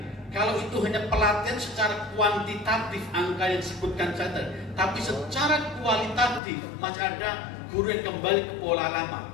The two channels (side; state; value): right; drops out; at 6.4 s